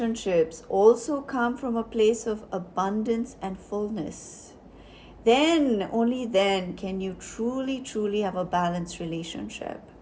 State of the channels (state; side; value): identical; both; correlation 1.00